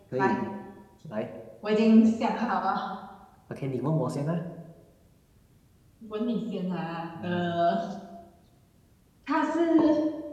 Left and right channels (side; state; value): both; identical; correlation 1.00